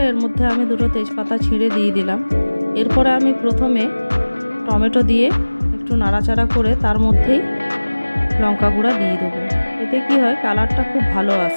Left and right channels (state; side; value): inverted; both; correlation -1.00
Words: এর মধ্যে আমি দুটো তেজপাতা ছিঁড়ে দিয়ে দিলাম। এরপরে আমি প্রথমে টমেটো দিয়ে একটু নাড়াচাড়া করে তার মধ্যেই লঙ্কা গুঁড়া দিয়ে দেবো। এতে কি হয়, কালারটা খুব ভালো